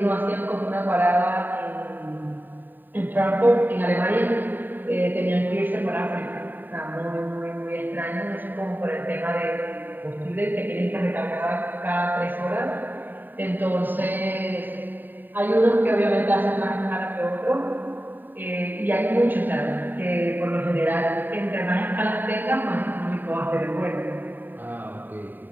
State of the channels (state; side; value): late; left; 0.090 ms